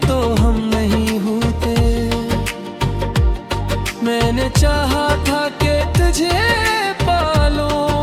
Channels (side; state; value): both; identical; correlation 1.00